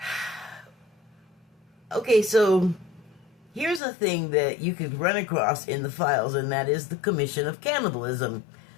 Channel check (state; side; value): drops out; right; at 3.8 s